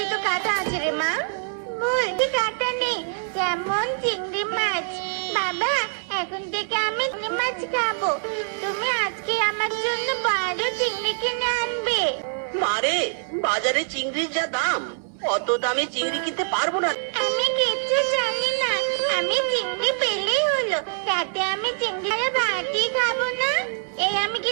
তো কাঁটা আছে রে মা। বলছি কাঁটা নেই, যেমন চিংড়ি মাছ। বাবা, এখন থেকে আমি চিংড়ি মাছ খাবো। তুমি আজকে আমার জন্য বড় চিংড়ি কিনে আনবে। মারে, বাজারে চিংড়ির যা দাম, অত দামে চিংড়ি কিনতে পারবো না। আমি কিচ্ছু জানি না। আমি চিংড়ি পেলেই হলো, তাতে আমি চিংড়ি আর ভাতই খাবো না। এই আমি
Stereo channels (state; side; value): silent; left; 62 dB below the other